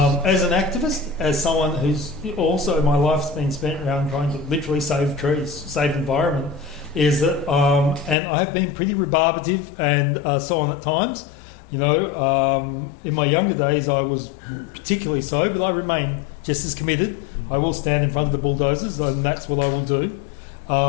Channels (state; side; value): drops out; right; at 8.2 s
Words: As an activist, as someone who's also, my life's been spent around trying to literally save trees, save the environment, is that, and I have been pretty rebarbative and so on at times. You know, in my younger days I was particularly so, but I remain just as committed. I will stand in front of the bulldozers, and that's what I will do.